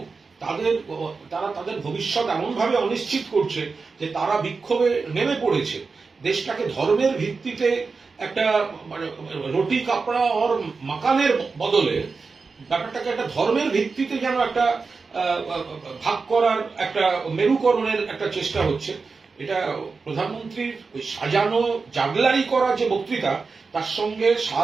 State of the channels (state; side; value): quieter; left; 4.5 dB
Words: তারা তাদের ভবিষ্যৎ এমন ভাবে অনিশ্চিত করছে যে তারা বিক্ষোভে নেমে পড়েছে। দেশটাকে ধর্মের ভিত্তিতে একটা মানে রুটি কাপড়া আর মাকানের বদলে ব্যাপারটাকে একটা ধর্মের ভিত্তিতে যেন একটা ভাগ করার, একটা মেরুকরণের একটা চেষ্টা হচ্ছে। এটা প্রধানমন্ত্রীর ওই সাজানো জাগলারি করা যে বক্তৃতা, তার সঙ্গে